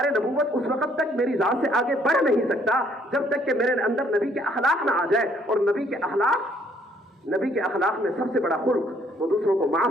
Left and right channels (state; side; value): normal; both; correlation 0.65